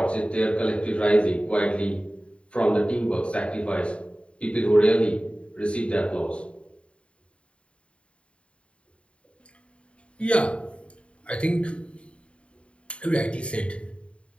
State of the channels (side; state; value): right; late; 0.059 ms